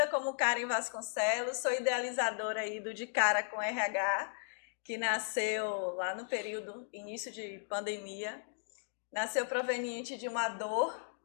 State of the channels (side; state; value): right; silent; digital silence